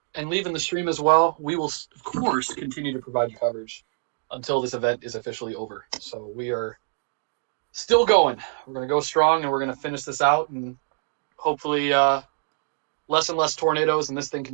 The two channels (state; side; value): silent; left; digital silence